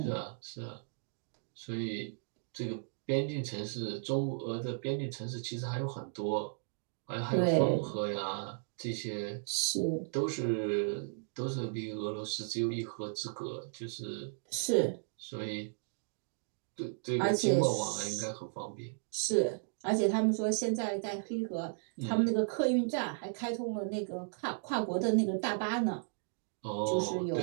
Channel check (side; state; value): left; silent; digital silence